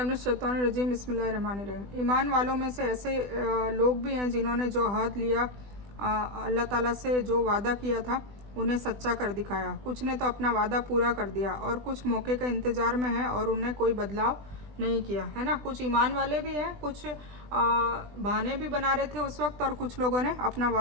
मिनश शैतानिर रजीम बिस्मिल्लाहिर रहमानिर रहीम। ईमान वालों में से ऐसे लोग भी हैं जिन्होंने जो अहद लिया अल्लाह ताला से, जो वादा किया था, उन्हें सच्चा कर दिखाया। कुछ ने तो अपना वादा पूरा कर दिया और कुछ मौके का इंतज़ार में है और उन्हें कोई बदलाव नहीं किया, है ना। कुछ ईमान वाले भी हैं, कुछ बहाने भी बना रहे थे उस वक्त, और कुछ लोगों ने अपना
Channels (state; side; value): late; left; 20 ms